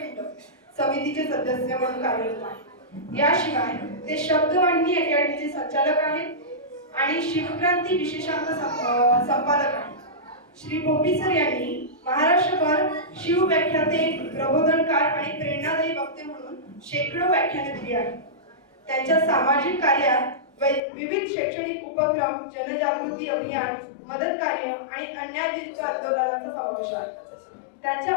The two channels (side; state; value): right; drops out; at 20.8 s